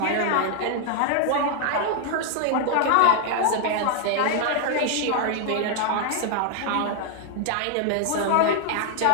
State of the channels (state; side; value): different; both; correlation 0.00